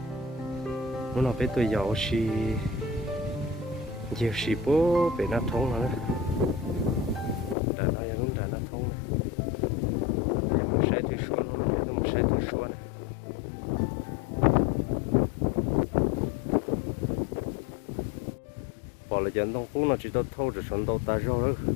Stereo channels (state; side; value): drops out; right; at 7.6 s